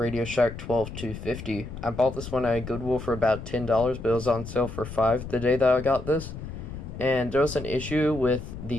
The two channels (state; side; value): noise; left; rumble, 10 dB below the sound